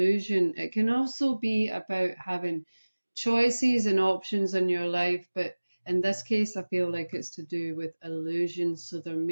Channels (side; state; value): both; inverted; correlation -1.00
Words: It can also be about having choices and options in your life, but in this case, I feel like it's to do with illusion. So there